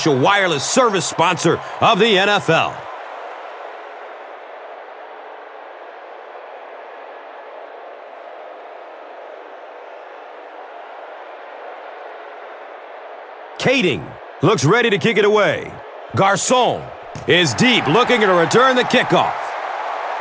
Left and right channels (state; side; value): identical; both; correlation 1.00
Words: wireless service sponsor of the NFL. Kading looks ready to kick it away. Garcon is deep, looking to return the kickoff.